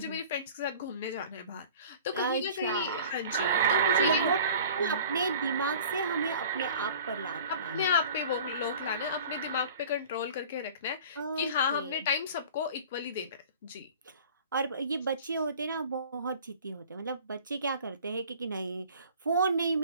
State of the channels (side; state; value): both; inverted; correlation -0.44